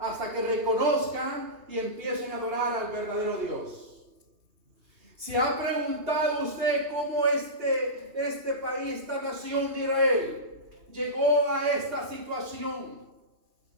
que reconozcan y empiecen a adorar al verdadero Dios. ¿Se ha preguntado usted cómo este país, esta nación de Israel, llegó a esta situación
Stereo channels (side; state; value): left; late; 2.8 ms